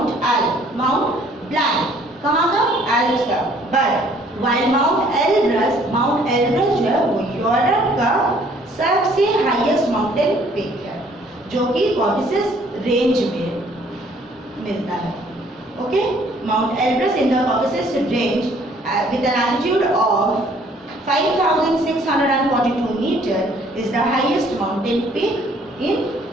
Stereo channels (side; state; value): both; normal; correlation 0.60